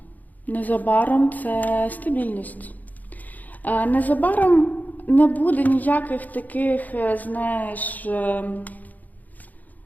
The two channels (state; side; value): late; right; 0.081 ms